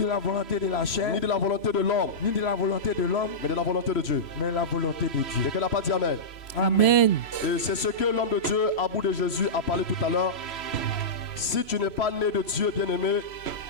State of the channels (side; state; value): right; late; 3.0 ms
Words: la volonté de la chair, ni de la volonté de l'homme, ni de la volonté de l'homme, mais de la volonté de Dieu. mais la volonté de Dieu. Quelqu'un n'a pas dit Amen. Amen. Et c'est ce que l'homme de Dieu, à bout de Jésus, a parlé tout à l'heure. Si tu n'es pas né de Dieu, bien-aimé,